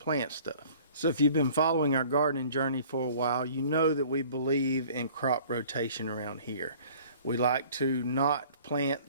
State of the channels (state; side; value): inverted; both; correlation -0.50